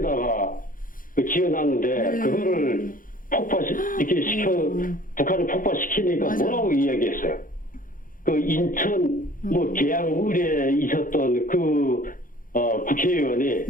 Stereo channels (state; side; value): late; right; 0.40 ms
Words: 지어놨는데 그거를 이렇게 북한을 폭파시키니까 맞아요. 뭐라고 이야기했어요? 그 인천 뭐 계양을에 있었던 그 국회의원이